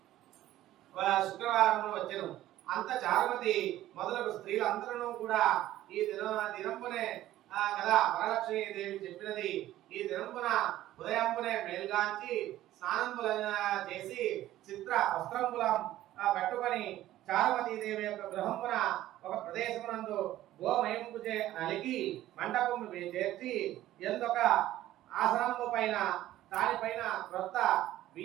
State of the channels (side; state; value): left; quieter; 14.2 dB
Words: శుక్రవారం వచ్చెను. అంత చారుమతి మొదలగు స్త్రీలందరూ కూడా ఈ దినంపునే కదా వరలక్ష్మీ దేవి చెప్పినది. ఈ దినంపున ఉదయంపునే మేల్గాంచి స్నానంపుల చేసి చిత్ర వస్త్రంపులం కట్టుకొని చారుమతీదేవి యొక్క గృహంపున ఒక ప్రదేశమునందు గోమయంపు నలిగి మండపము చేర్చి ఎందొక ఆసనము పైన దానిపైన క్రొత్త